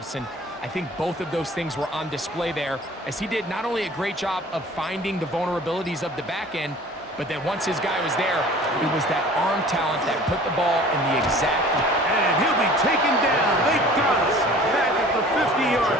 and I think both of those things were on display there, as he did not only a great job of finding the vulnerabilities of the back end, but then once his guy was there, it was that arm talent that put the ball in the exact... And he'll be taken down. They got us back at the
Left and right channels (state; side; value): normal; both; correlation 0.46